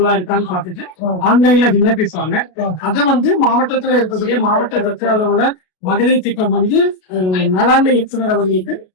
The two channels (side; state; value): right; late; 33 ms